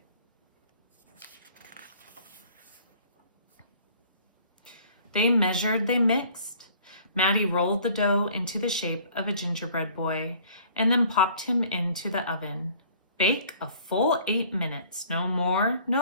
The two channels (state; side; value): inverted; both; correlation -0.54